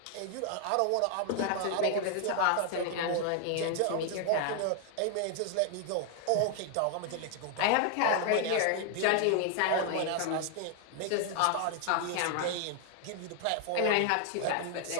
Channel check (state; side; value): different; both; correlation 0.00